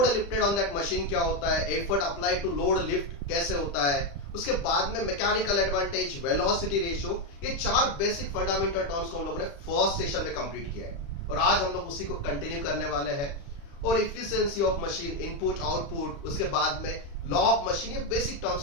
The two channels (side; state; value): right; late; 35 ms